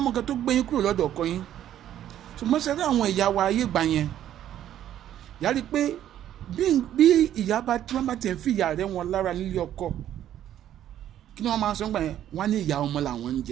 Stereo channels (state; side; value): quieter; left; 11.4 dB